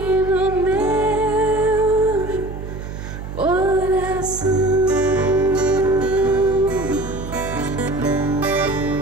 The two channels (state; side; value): noise; right; hum, 9 dB below the sound